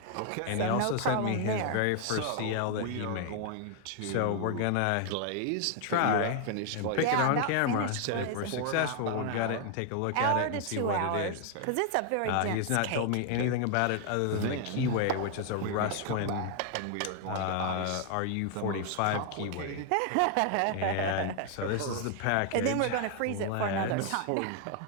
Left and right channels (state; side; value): different; both; correlation 0.00